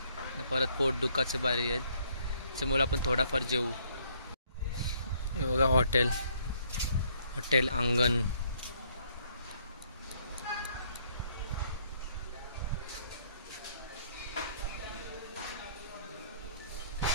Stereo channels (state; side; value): inverted; both; correlation -0.66